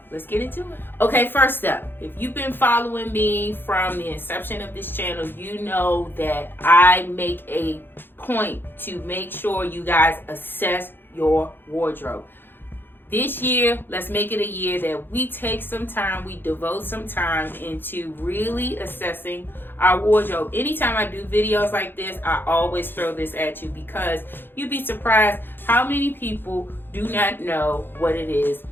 let's get into it. Okay, first up, if you've been following me from the inception of this channel, you know that I make a point to make sure you guys assess your wardrobe. This year, let's make it a year that we take some time, we devote some time into really assessing our wardrobe. Anytime I do videos like this, I always throw this at you, because you'd be surprised how many people do not know what it is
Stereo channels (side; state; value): right; late; 0.10 ms